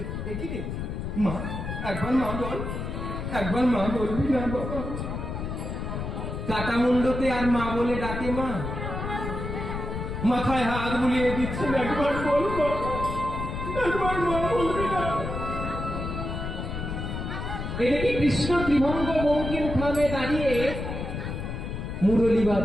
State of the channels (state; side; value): noise; left; rumble, 5 dB below the sound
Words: মা, একবার মা বল, একবার মা বলবি না বাবা? কাটা মুন্ডতে আর মা বলে ডাকে মা, মাথায় হাত বুলিয়ে দিচ্ছেন, একবার বল মা, একবার মা বলবি না? এদিকে কৃষ্ণ ত্রিভঙ্গ বঙ্কিম থামে দাঁড়িয়ে মুরলী